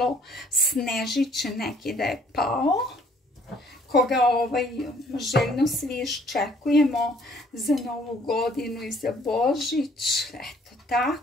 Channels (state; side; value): normal; both; correlation 0.61